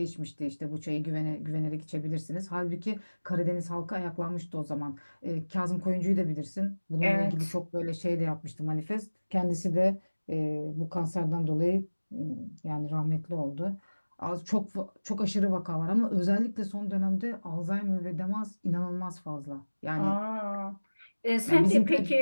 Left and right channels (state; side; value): inverted; both; correlation -1.00